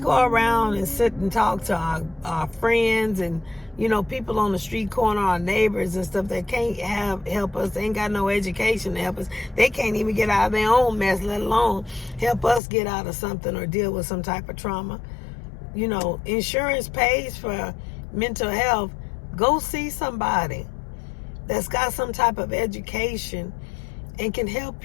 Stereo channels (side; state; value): right; drops out; at 12.6 s